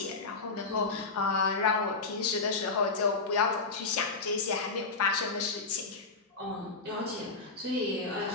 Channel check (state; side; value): quieter; right; 4.0 dB